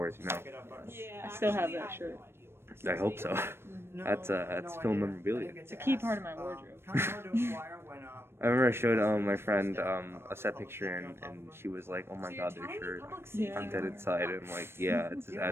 you know. Yeah. I still have that shirt. I hope so. That's film memorabilia. It's a key part of my wardrobe. I remember I showed my friend a set picture and she was like, "Oh my god, their shirt, Yeah. I'm Dead Inside." And I'm like, "Yeah, it's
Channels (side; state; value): left; late; 0.12 ms